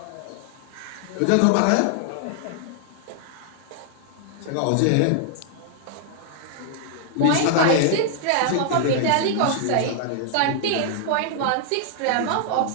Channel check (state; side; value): different; both; correlation -0.01